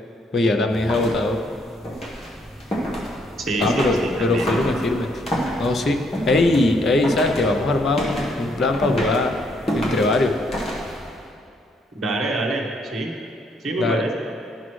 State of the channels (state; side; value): normal; both; correlation 0.70